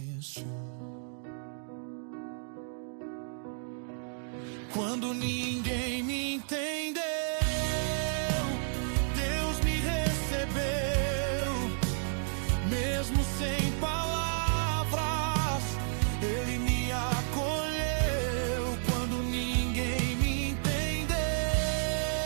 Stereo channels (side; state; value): left; silent; digital silence